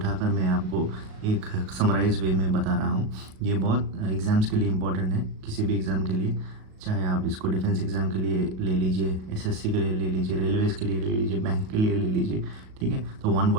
मैं आपको एक समराइज वे में बता रहा हूँ। ये बहुत एग्ज़ाम्स के लिए इम्पोर्टेंट है, किसी भी एग्ज़ाम के लिए, चाहे आप इसको डिफेंस एग्ज़ाम के लिए ले लीजिए, एसएससी के लिए ले लीजिए, रेलवेज़ के लिए ले लीजिए, बैंक के लिए ले लीजिए। ठीक है, तो one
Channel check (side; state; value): left; late; 37 ms